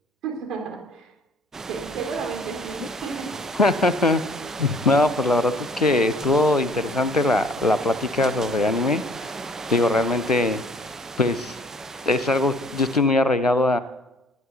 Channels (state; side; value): normal; both; correlation 0.56